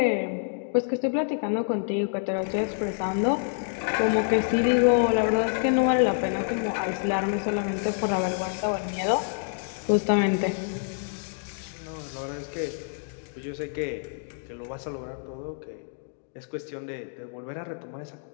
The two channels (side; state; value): right; silent; digital silence